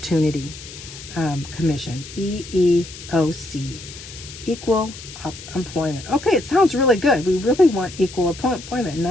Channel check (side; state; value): left; noise; hiss, 14 dB below the sound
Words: Commission, EEOC, Equal Employment. Okay, it sounds really good. We really want equal employment. In